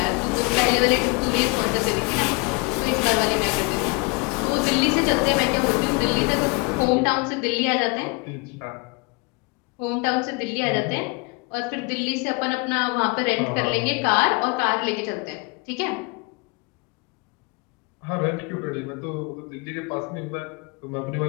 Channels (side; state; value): right; quieter; 28.7 dB